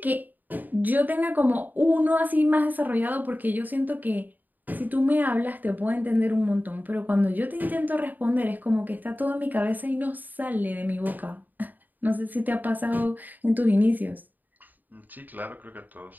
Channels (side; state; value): left; late; 0.086 ms